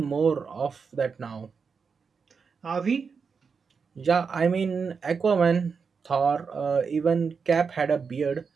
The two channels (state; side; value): quieter; left; 5.6 dB